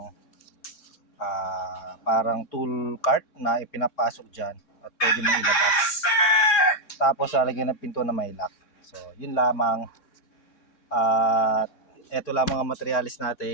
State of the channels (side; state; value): right; late; 3.6 ms